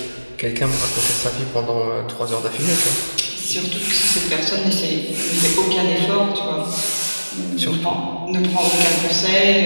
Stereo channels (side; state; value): both; inverted; correlation -1.00